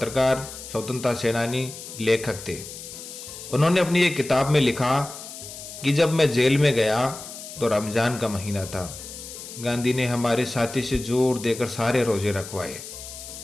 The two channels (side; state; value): left; noise; hiss, 12 dB below the sound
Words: स्वतंत्रता सेनानी, लेखक थे। उन्होंने अपनी एक किताब में लिखा कि जब मैं जेल में गया तो रमजान का महीना था। गांधी ने हमारे साथी से जोर देकर सारे रोजे रखवाए